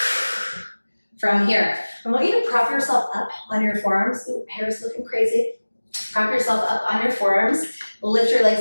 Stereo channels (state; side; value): inverted; both; correlation -1.00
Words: From here, I want you to prop yourself up on your forearms. Ooh, hair's looking crazy. Prop yourself up on your forearms. Lift your